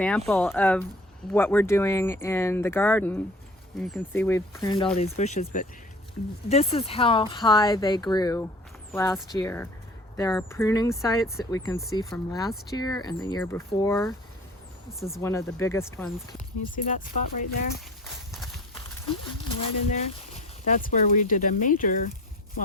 of what we're doing in the garden. You can see we've pruned all these bushes, but this is how high they grew last year. There are pruning sites that we can see from last year and the year before. This is one of the biggest ones. Can you see that spot right there? Right in there? That's where we did a major,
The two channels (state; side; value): normal; both; correlation 0.44